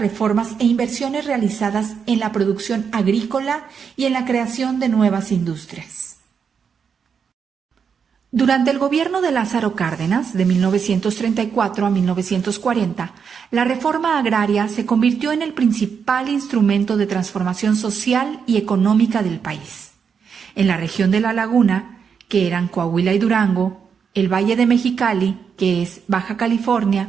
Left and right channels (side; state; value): left; quieter; 6.6 dB